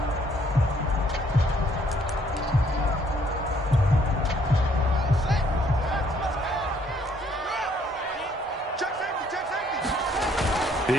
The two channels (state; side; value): normal; both; correlation 0.65